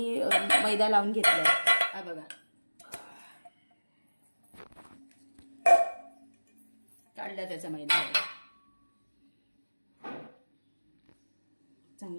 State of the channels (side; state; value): both; inverted; correlation -1.00